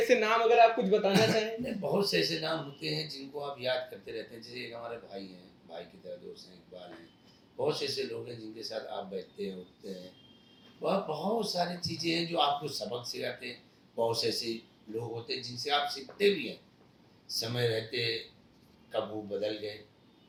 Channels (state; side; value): identical; both; correlation 1.00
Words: नाम अगर आप कुछ बताना चाहें? नहीं, बहुत से ऐसे नाम होते हैं जिनको आप याद करते रहते हैं। जैसे एक हमारे भाई हैं, भाई की तरह दोस्त हैं, इकबाल हैं। बहुत से ऐसे लोग हैं जिनके साथ आप बैठते हैं, उठते हैं। वह बहुत सारी चीज़ें हैं जो आपको सबक सिखाते हैं। बहुत से ऐसे लोग होते हैं जिनसे आप सीखते भी हैं। समय रहते कब वो बदल गए,